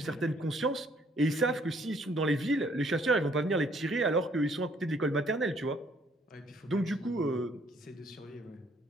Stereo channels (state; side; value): normal; both; correlation 0.64